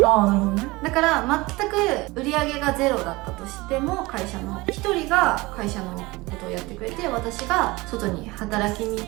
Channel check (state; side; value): quieter; left; 22.1 dB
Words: ああ、なるほどね。だから全く売り上げがゼロだったとしても、会社の1人が会社のことをやってくれて、私が外に働きに行